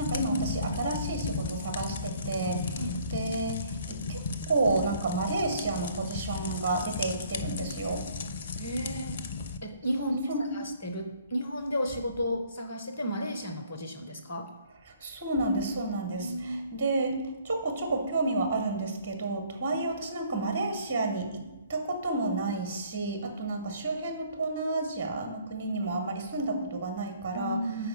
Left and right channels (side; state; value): both; inverted; correlation -0.59